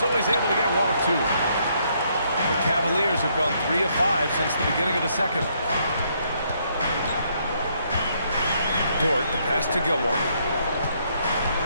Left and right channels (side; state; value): both; inverted; correlation -0.72